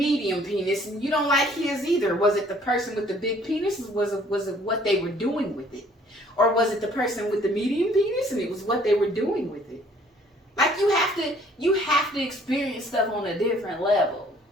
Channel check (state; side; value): normal; both; correlation 0.58